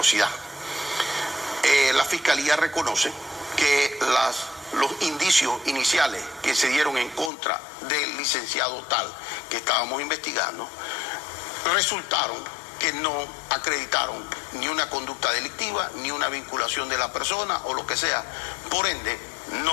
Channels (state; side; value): drops out; right; at 7.3 s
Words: La fiscalía reconoce que los indicios iniciales que se dieron en contra del licenciado tal que estábamos investigando resultaron que no acreditaron ni una conducta delictiva, ni una vinculación de la persona o lo que sea. Por ende,